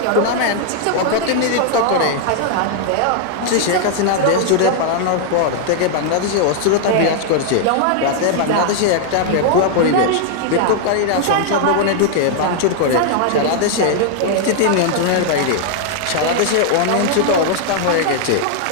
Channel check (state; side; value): different; both; correlation 0.00